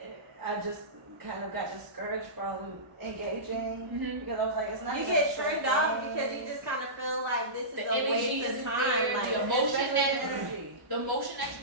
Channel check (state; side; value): late; left; 1.1 ms